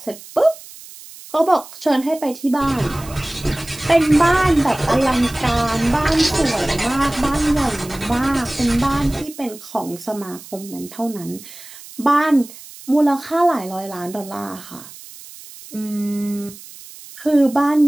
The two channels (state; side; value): noise; right; hiss, 17 dB below the sound